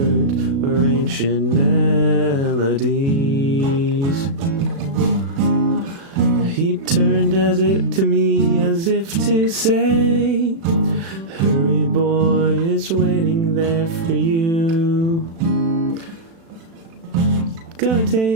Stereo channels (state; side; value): late; left; 36 ms